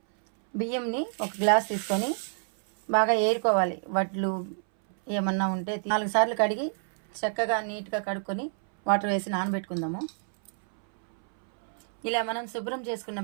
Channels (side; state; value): left; silent; 59 dB below the other